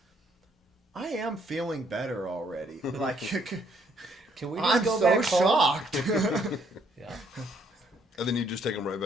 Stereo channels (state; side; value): normal; both; correlation 0.68